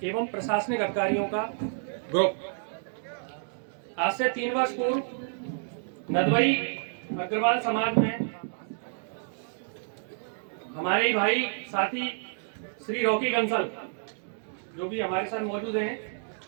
एवं प्रशासनिक अधिकारियों का ग्रुप आज से 3 वर्ष पूर्व नदवई अग्रवाल समाज में हमारे ही भाई साथी श्री रॉकी कंसल जो भी हमारे साथ मौजूद हैं,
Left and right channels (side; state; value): left; silent; digital silence